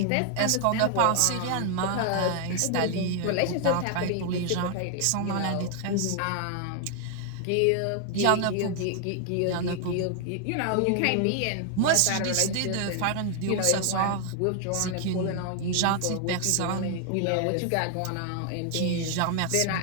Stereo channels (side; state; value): both; different; correlation 0.00